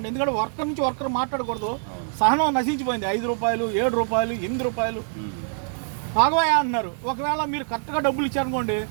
ఎందుకంటే వర్కర్ నుంచి వర్కర్ మాట్లాడకూడదు, సహనం నశించిపోయింది. 5 రూపాయలు 7 రూపాయలు 8 రూపాయలు ఆగవయ్యా అంటున్నారు. ఒకవేళ మీరు కరెక్ట్గా డబ్బులు ఇచ్చారనుకోండి,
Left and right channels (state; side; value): silent; left; digital silence